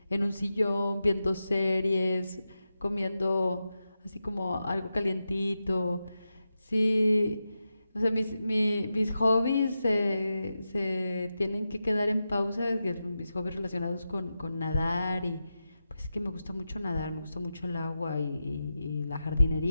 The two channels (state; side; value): inverted; both; correlation -0.90